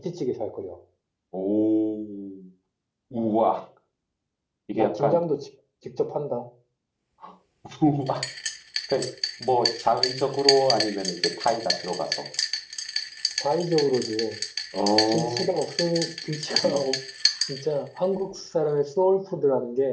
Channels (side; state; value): both; identical; correlation 1.00